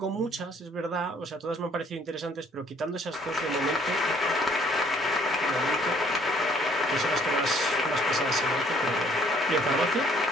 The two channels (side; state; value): both; normal; correlation 0.62